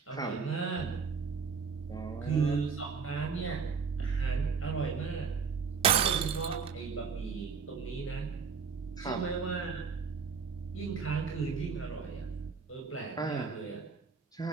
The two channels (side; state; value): left; quieter; 5.7 dB